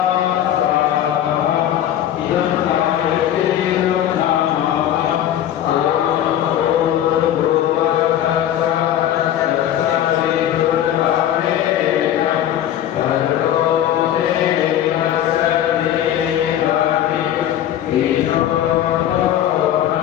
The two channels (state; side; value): quieter; right; 11.3 dB